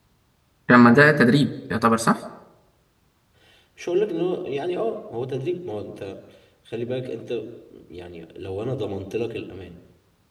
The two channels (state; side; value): identical; both; correlation 1.00